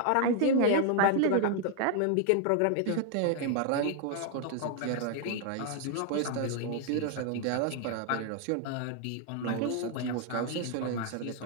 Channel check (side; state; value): both; different; correlation 0.00